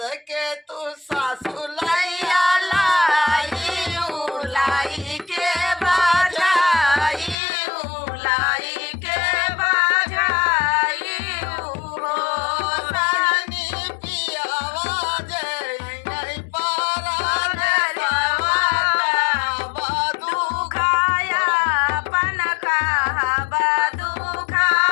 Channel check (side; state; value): right; drops out; at 7.4 s